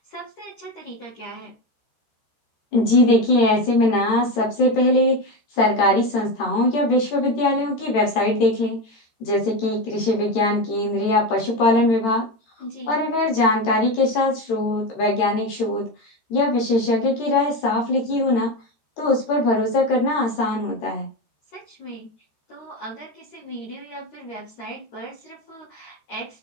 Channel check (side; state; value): right; late; 13 ms